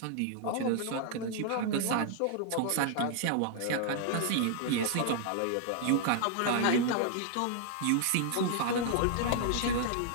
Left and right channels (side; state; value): both; different; correlation -0.01